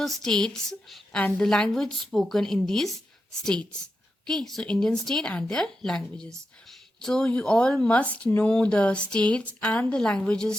states and the language spoken in these states. Okay, so Indian state and their languages. So you all must know the states and the languages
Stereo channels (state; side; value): normal; both; correlation 0.88